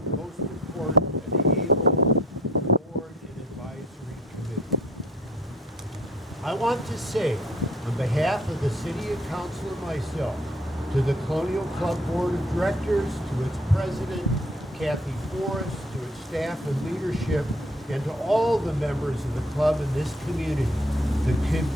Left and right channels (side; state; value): both; normal; correlation 0.54